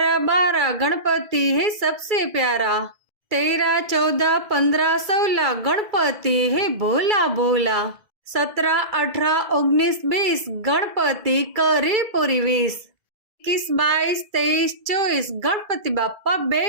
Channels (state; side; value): late; left; 2.3 ms